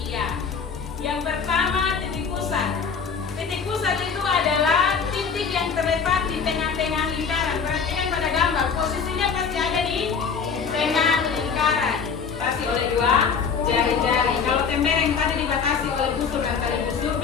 Yang pertama titik pusat. Titik pusat itu adalah titik yang terletak di tengah-tengah lingkaran. Perhatikan pada gambar, posisinya pasti ada di tengah lingkaran. Dibatasi oleh dua jari-jari. Kalau tembereng tadi dibatasi oleh busur dan tali busur,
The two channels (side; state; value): right; quieter; 6.0 dB